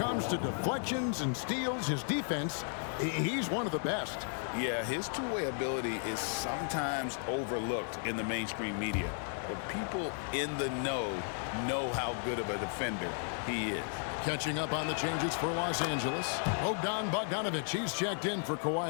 to deflections and steals, his defense, he's one of the best. Yeah, his two-way ability is sometimes overlooked in the mainstream media, but people in the know how good of a defender he is. Catching up on the changes for Los Angeles. Bogdanovic, he's checked in for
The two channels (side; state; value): right; silent; 55 dB below the other